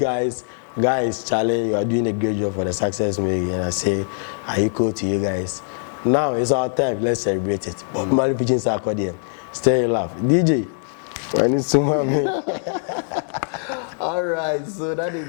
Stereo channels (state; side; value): silent; right; digital silence